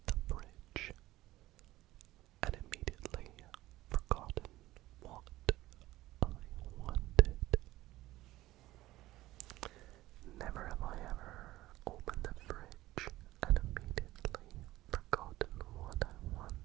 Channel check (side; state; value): left; quieter; 16.8 dB